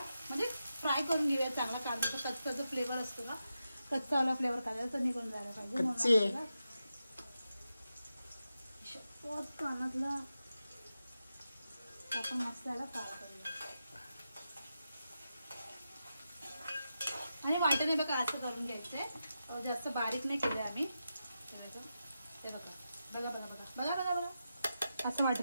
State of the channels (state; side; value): inverted; both; correlation -0.89